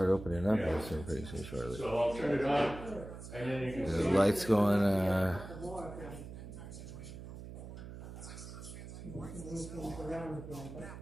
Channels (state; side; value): noise; right; hum, 11 dB below the sound